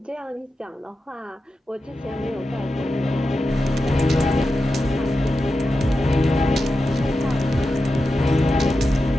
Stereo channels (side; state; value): both; normal; correlation 0.91